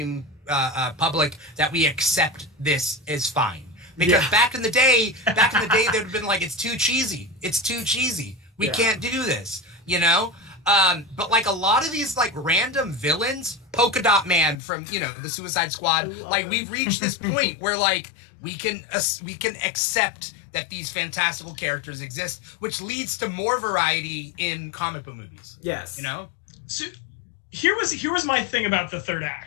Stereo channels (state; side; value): drops out; right; at 14.6 s